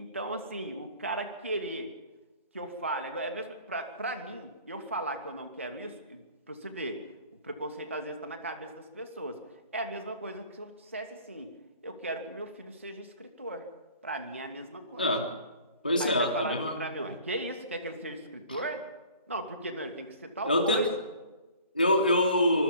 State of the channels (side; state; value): both; inverted; correlation -0.48